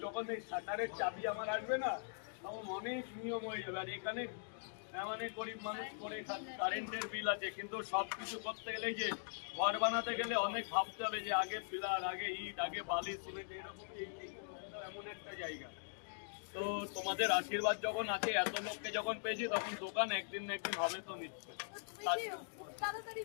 যখন এই শাটারের চাবি আমার আসবে না, তখন অনেক নিয়ম হয়ে যাবে। আর এখানে মানে গরিব মানুষ করে কারেন্টের বিল আছে, কিন্তু সবকিছু করতে গেলে যে ঘর বানাতে গেলে অনেক ভাবতে হবে যে আগে পিলার, আগে ইট, আগে বালি, সিমেন্ট, এরকম এমন একটা জায়গা। তো তোমাদের আশীর্বাদ যখন আছে, এত লোককে যখন পেয়েছি, তখন দোকান একদিন না একদিন হবে তো নিশ্চয়।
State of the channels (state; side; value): silent; right; digital silence